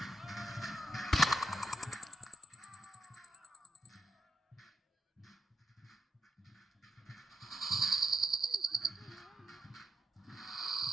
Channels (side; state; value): both; normal; correlation 0.84